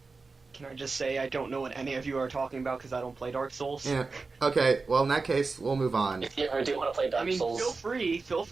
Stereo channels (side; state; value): left; quieter; 4.1 dB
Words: Can I just say I don't know what any of you are talking about because I don't play Dark Souls? Yeah. Okay. Well, in that case, we'll move on. If you ever do want to play Dark I mean, Souls, feel